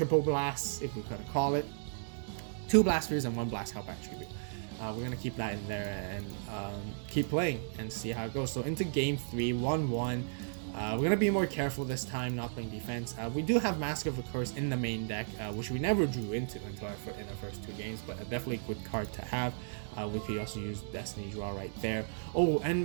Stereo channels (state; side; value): silent; left; digital silence